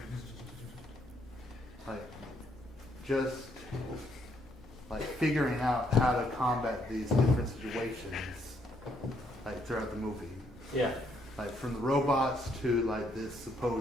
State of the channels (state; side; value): normal; both; correlation 0.72